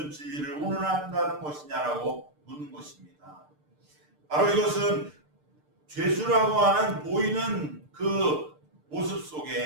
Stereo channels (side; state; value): left; late; 6.7 ms